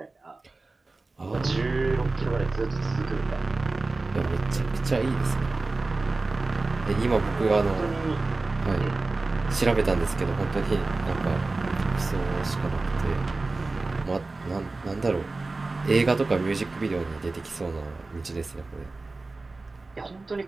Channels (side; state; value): left; quieter; 3.4 dB